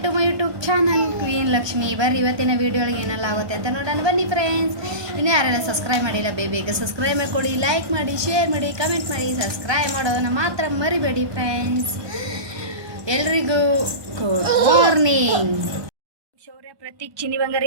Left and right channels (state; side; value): late; left; 1.3 ms